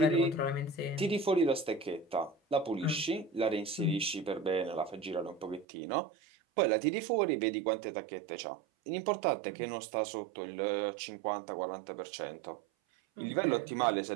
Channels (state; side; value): drops out; left; at 5.7 s